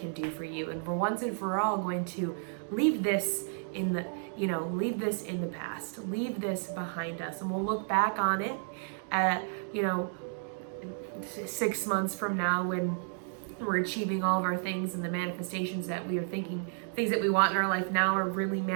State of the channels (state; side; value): silent; left; 56 dB below the other